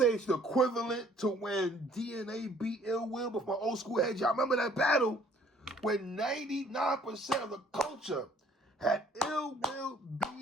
it's the equivalent to when DNA beat Ill Will, but for my old school heads, y'all remember that battle when 99% of the culture had Ill Will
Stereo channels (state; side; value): normal; both; correlation 0.59